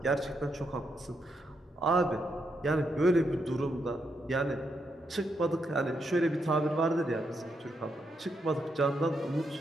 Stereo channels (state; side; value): normal; both; correlation 0.80